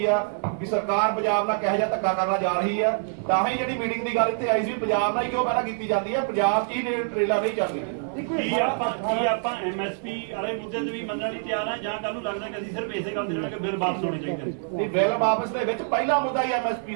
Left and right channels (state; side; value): silent; left; 61 dB below the other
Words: ਆ ਵੀ ਸਰਕਾਰ ਪੰਜਾਬ ਨਾਲ ਕਿਹੋ ਜਿਹਾ ਧੱਕਾ ਕਰਨਾ ਜਾ ਰਹੀ ਆ। ਤਾਂ ਹੀ ਜਿਹੜੀ ਮੀਟਿੰਗ ਦੀ ਗੱਲ ਇੱਥੇ ਆਈ ਸੀ, ਪੰਜਾਬ ਨਾਲ ਹੀ ਕਿਉਂ ਪਹਿਲਾਂ ਕੀਤੀ ਜਾਂਦੀ ਹੈ, ਪੰਜਾਬ 'ਚ ਹੀ ਟ੍ਰੇਲਾਂ ਨਹੀਂ ਚੱਲਦੀਆਂ। ਕੀ ਆਪਾਂ ਐਮਐਸਪੀ ਵਾਲੇ ਮੁੱਦੇ ਤੇ ਵੀ ਮੰਨਣ ਲਈ ਤਿਆਰ ਆ, ਜਾਂ ਕੱਲ ਨੂੰ ਲੱਗਦਾ ਕਿ ਅਸੀਂ ਸਿਰਫ ਇਸੇ ਗੱਲ ਤੇ ਰਹਿਣਾ ਕਿ ਬਿੱਲ ਵਾਪਸ ਹੋਣੇ ਚਾਹੀਦੇ? ਨਹੀਂ, ਬਿੱਲ ਵਾਪਸ ਦੇ ਵਿੱਚ ਪਹਿਲਾ ਮੁੱਦਾ ਹੀ ਐਮਐਸਪੀ